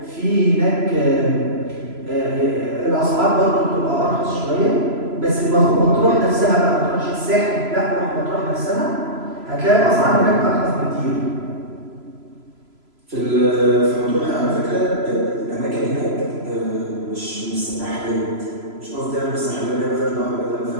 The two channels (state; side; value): late; left; 3.0 ms